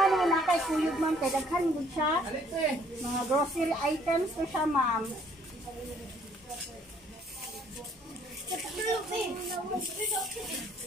mo na kay kuyog ma'am, kay daghan gud siya. Mga grocery items to siya ma'am.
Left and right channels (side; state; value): both; normal; correlation 0.62